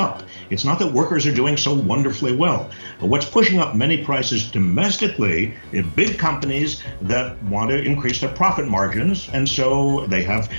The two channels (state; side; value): inverted; both; correlation -1.00